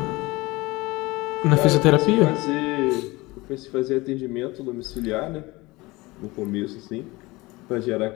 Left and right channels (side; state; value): right; quieter; 22.1 dB